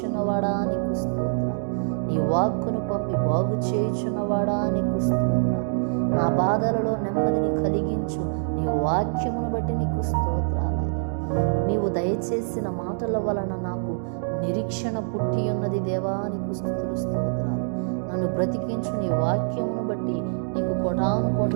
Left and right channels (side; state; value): left; silent; digital silence